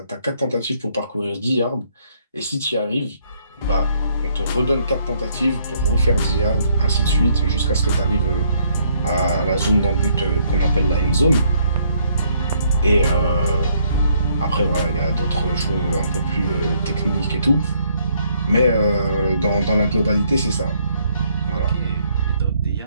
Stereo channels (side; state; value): both; inverted; correlation -0.68